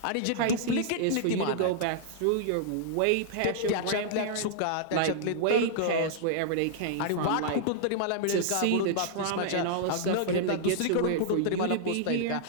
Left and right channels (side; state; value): both; different; correlation -0.01